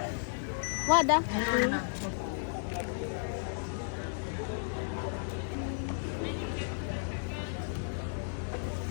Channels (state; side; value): silent; right; digital silence